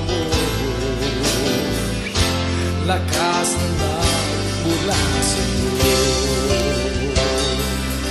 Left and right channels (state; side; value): identical; both; correlation 1.00